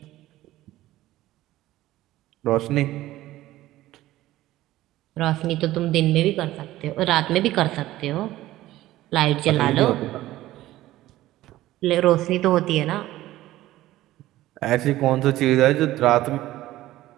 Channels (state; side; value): quieter; left; 15.6 dB